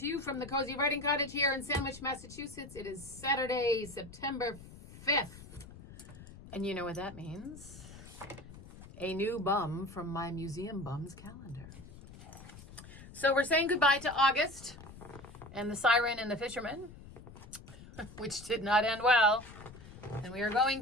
you from the Cozy Writing Cottage here in Sandwich, Massachusetts. It is Saturday, September 5th. And you know what that means. A new bum from my Museum Bums calendar. So we're saying goodbye to August and the Siren and the Fisherman, which did not end well. And we are going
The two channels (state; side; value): noise; left; rumble, 17 dB below the sound